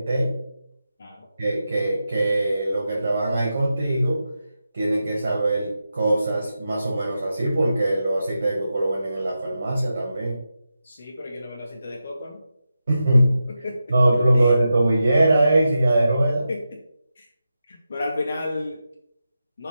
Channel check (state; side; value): inverted; both; correlation -0.90